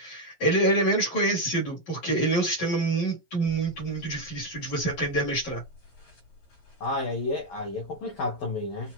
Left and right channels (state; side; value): late; right; 11 ms